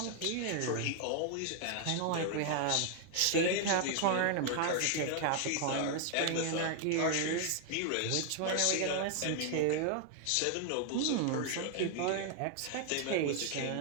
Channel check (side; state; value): both; different; correlation 0.00